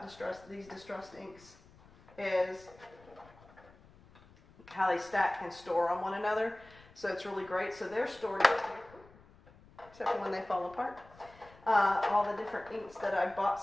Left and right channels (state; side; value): noise; left; rumble, 24 dB below the sound